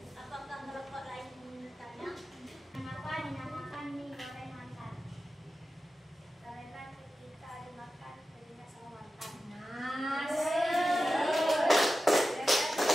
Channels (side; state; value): both; normal; correlation 0.93